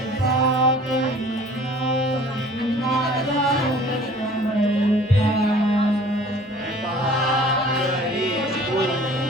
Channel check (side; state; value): both; normal; correlation 0.49